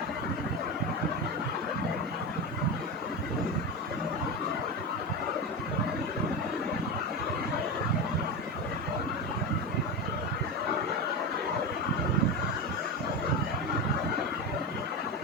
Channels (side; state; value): both; normal; correlation 0.19